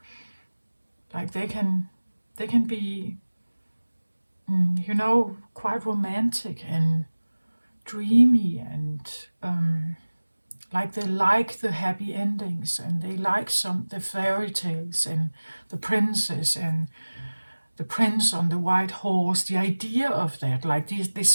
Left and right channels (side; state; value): both; inverted; correlation -1.00